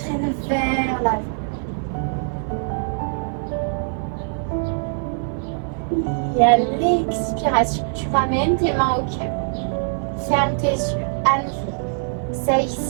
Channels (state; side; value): silent; left; 55 dB below the other